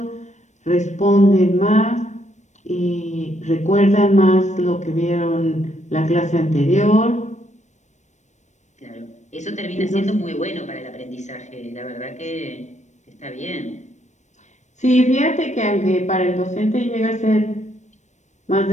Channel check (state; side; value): late; right; 0.34 ms